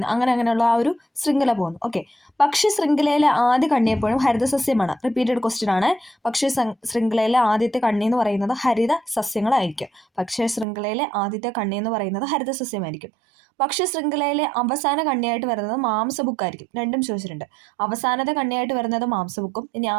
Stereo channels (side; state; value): left; drops out; at 10.7 s